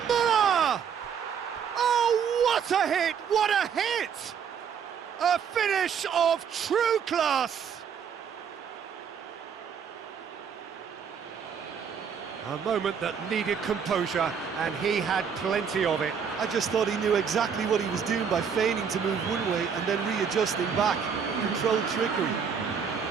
Muller! Oh, what a hit! What a hit! A finish of true class! A moment that needed composure, and he had plenty of it. I just thought he knew exactly what he was doing by feigning to move one way and then readjusting back. Controlled trickery.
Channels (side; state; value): left; quieter; 7.1 dB